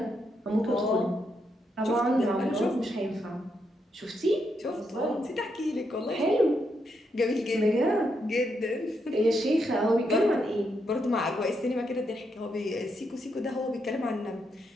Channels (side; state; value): both; normal; correlation 0.80